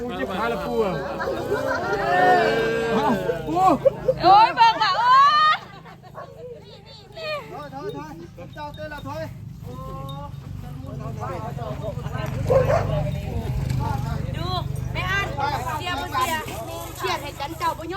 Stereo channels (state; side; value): identical; both; correlation 1.00